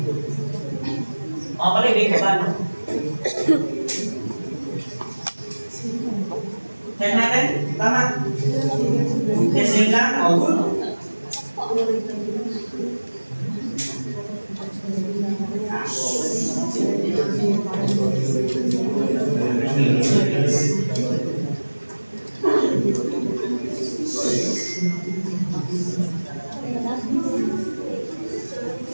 Mga pala, ibig ko ba, no? Check natin? Tama? Testing lang? O, good.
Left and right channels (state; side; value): inverted; both; correlation -1.00